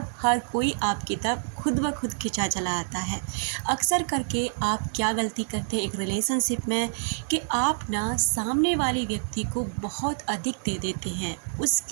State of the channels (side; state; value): left; silent; digital silence